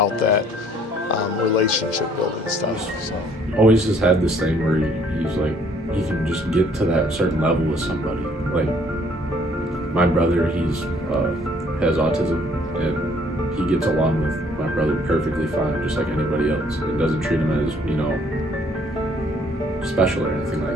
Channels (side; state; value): both; normal; correlation 0.61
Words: that relationship building stuff. So. Always has had this thing where he's like, he can just get to that certain level with somebody. Like my brother, has autism, and he gets along with my brother perfectly fine, just like anybody else. It doesn't treat him as, you know, special or anything